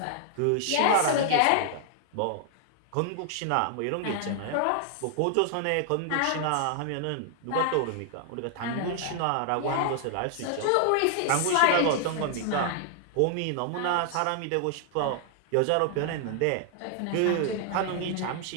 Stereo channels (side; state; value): both; different; correlation 0.00